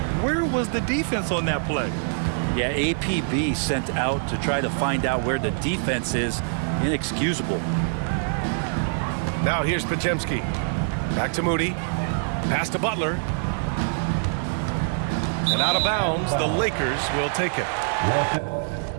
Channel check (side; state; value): left; silent; digital silence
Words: where was the defense on that play? Yeah, APB sent out to try to find out where the defense is. Inexcusable. Now here's Pajemski. Back to Moody. Pass to Butler. And out of bounds, the Lakers will take it.